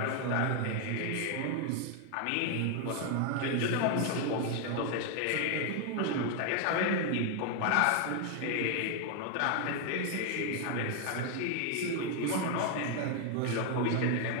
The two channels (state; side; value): different; both; correlation 0.01